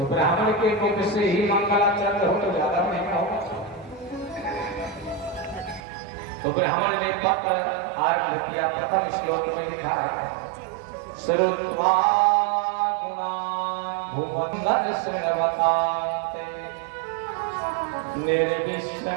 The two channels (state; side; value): drops out; left; at 5.8 s